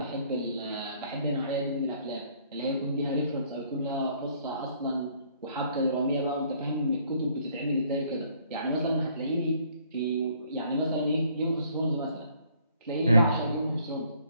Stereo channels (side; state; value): both; inverted; correlation -0.62